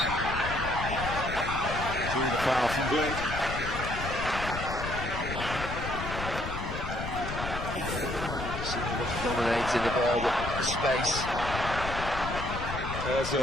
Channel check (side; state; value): left; noise; rumble, 6 dB below the sound